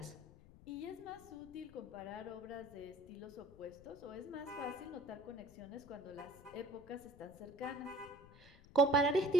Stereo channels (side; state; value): left; noise; rumble, 21 dB below the sound